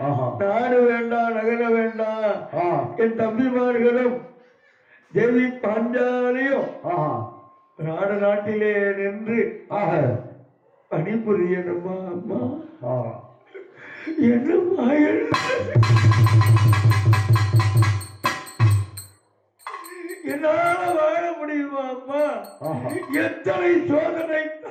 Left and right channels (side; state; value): both; identical; correlation 1.00